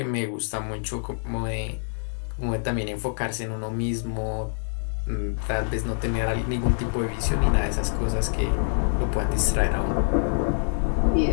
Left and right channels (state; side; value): silent; right; digital silence